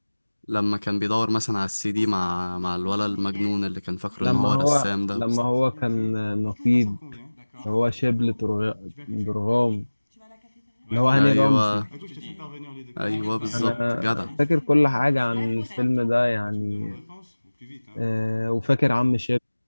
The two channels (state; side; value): inverted; both; correlation -1.00